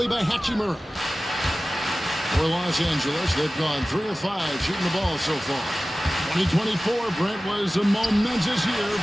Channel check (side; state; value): both; normal; correlation 0.96